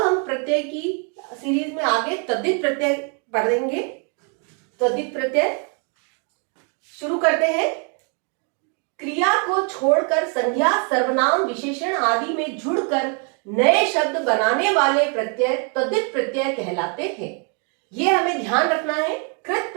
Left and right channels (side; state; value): left; quieter; 39.3 dB